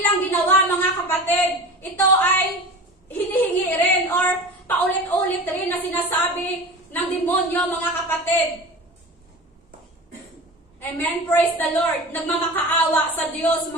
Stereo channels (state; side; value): normal; both; correlation 0.34